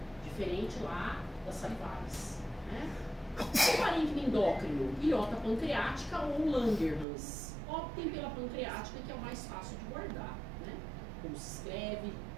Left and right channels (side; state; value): left; drops out; at 7.1 s